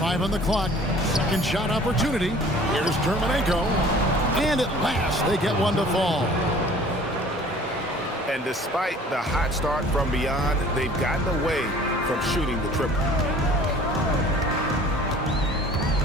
on the clock. Second shot opportunity. Here's Terminenko. And at last, they get one to fall. And despite the hot start from beyond, they've gotten away from shooting the triple.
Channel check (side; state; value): both; normal; correlation 0.50